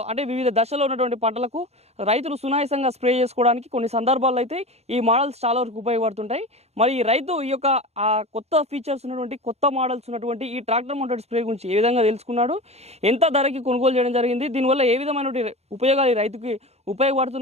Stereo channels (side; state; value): left; late; 0.31 ms